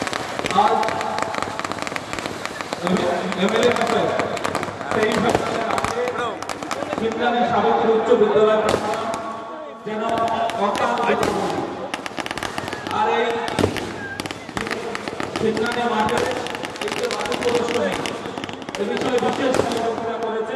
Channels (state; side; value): identical; both; correlation 1.00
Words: एमएलए शिवनानी सावित्री उच्च विद्यालय যেন অকাল আর এই শিবনানি মাঠে এই যে বাকি প্রদর্শনী এই বিষয়ে বিশেষ আলোচনা